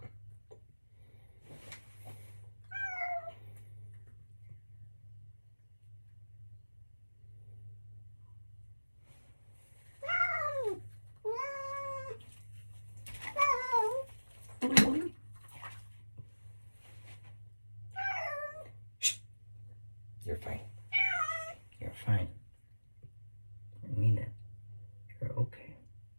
Shh. You're fine. You're fine. I mean it. You're okay.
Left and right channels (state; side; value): inverted; both; correlation -1.00